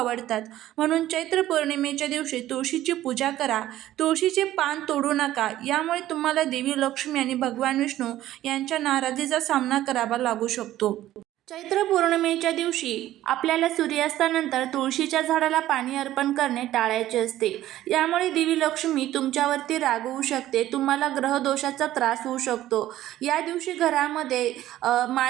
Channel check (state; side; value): quieter; left; 14.0 dB